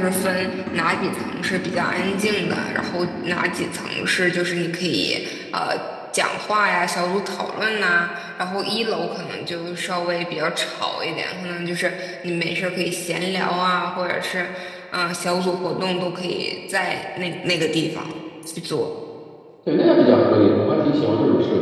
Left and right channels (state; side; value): identical; both; correlation 1.00